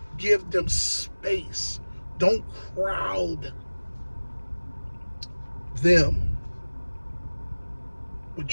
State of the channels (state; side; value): inverted; both; correlation -1.00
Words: Give them space. Don't crowd them